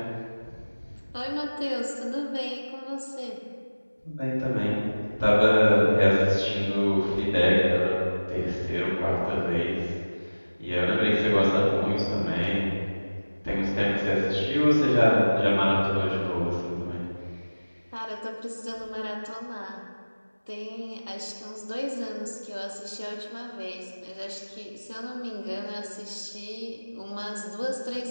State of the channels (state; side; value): inverted; both; correlation -1.00